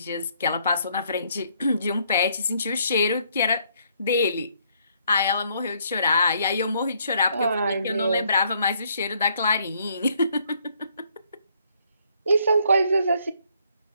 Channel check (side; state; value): both; inverted; correlation -0.69